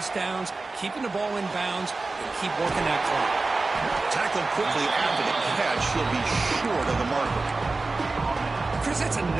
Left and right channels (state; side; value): quieter; left; 3.5 dB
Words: downs, keeping the ball in bounds, and keep working that clock. Tackled quickly after the catch. He'll be short of the marker. Chris, that's